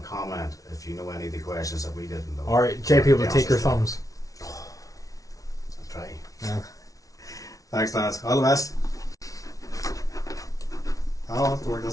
comment if you know any of the questions that we didn't know. Or JP will Yeah, take your so- thumbs. I'll try. Yeah. thanks, lads. All the best. I'll have to work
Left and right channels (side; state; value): right; late; 0.17 ms